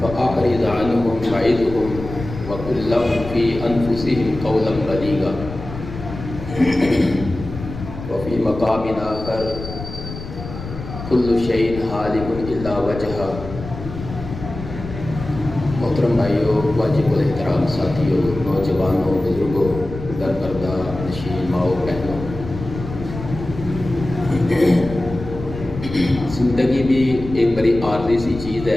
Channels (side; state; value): left; noise; rumble, 10 dB below the sound